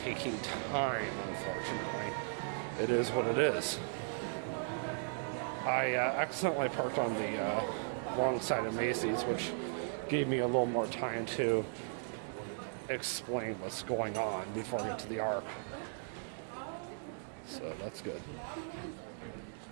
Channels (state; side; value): silent; left; digital silence